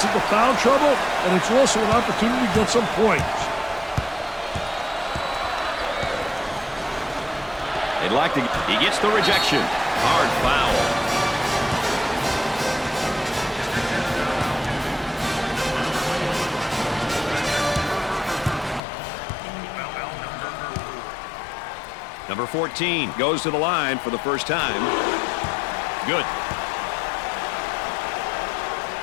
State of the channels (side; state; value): right; drops out; at 18.8 s